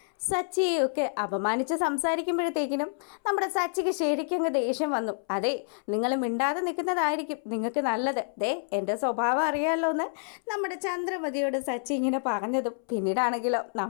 സച്ചിയെയൊക്കെ അപമാനിച്ച് സംസാരിക്കുമ്പോഴത്തേക്കിനും നമ്മുടെ സച്ചിക്ക് ശരിക്കും അങ്ങ് ദേഷ്യം വന്നു. അതെ, നിങ്ങൾ മിണ്ടാതെ നിൽക്കുന്നതായിരിക്കും നിങ്ങൾക്ക് നല്ലത്. ദേ, എൻ്റെ സ്വഭാവം അറിയാമല്ലോ എന്ന് നമ്മുടെ ചന്ദ്രമതിയോട് സച്ചി ഇങ്ങനെ പറഞ്ഞതും പിന്നീടാണെങ്കിലോ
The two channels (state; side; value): silent; right; 59 dB below the other